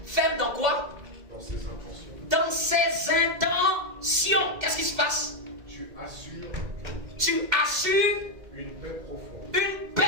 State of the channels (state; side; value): late; left; 2.0 ms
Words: Ferme dans quoi? Dans ses intentions. Dans ses intentions. Qu'est-ce qui se passe? Tu assures une paix profonde. Une